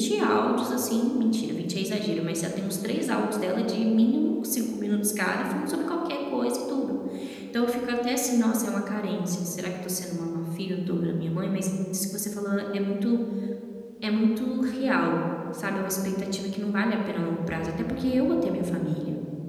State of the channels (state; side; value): identical; both; correlation 1.00